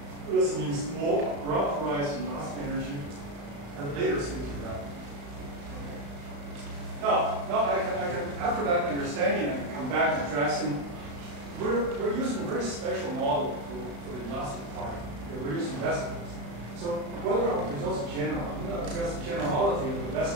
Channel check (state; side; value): late; left; 35 ms